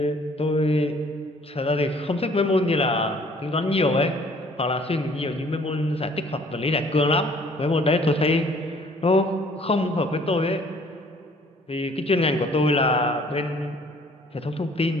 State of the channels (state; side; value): normal; both; correlation 0.57